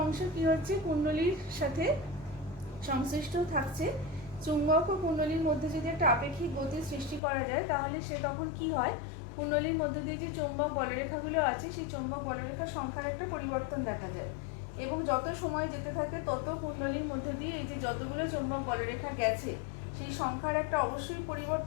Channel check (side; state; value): right; drops out; at 7.2 s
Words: অংশ কি হচ্ছে, কুণ্ডলীর সাথে সংশ্লিষ্ট থাকছে। চুম্বক ও কুণ্ডলীর মধ্যে যদি একটা আপেক্ষিক গতির সৃষ্টি করা যায়, তাহলে সে তখন কি হয়, কুণ্ডলীর মধ্যে দিয়ে যে চৌম্বক বলরেখাগুলো আছে, সেই চৌম্বক বলরেখার সংখ্যার একটা পরিবর্তন দেখা যায়। এবং যত সময় যেতে থাকে তত কুণ্ডলীর মধ্যে দিয়ে এই যে যতগুলো চৌম্বক বলরেখা গেছে, সেই সংখ্যার একটা অবশ্যই